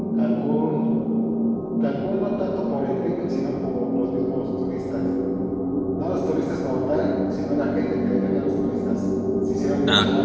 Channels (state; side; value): identical; both; correlation 1.00